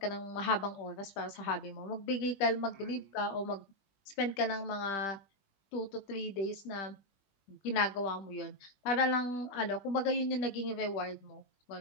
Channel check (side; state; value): right; late; 20 ms